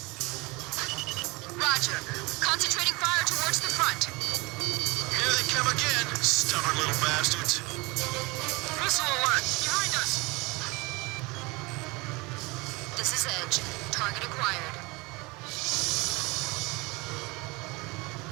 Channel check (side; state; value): left; quieter; 25.1 dB